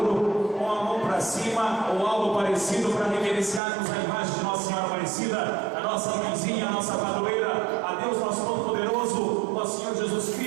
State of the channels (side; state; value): left; drops out; at 3.6 s